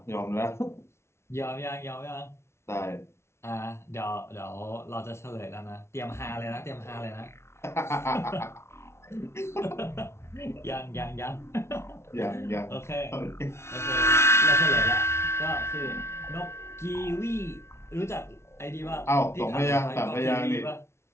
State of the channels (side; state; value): right; late; 0.13 ms